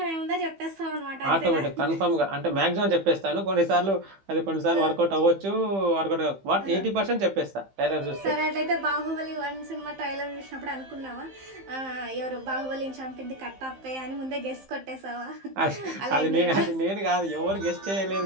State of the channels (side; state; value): left; late; 15 ms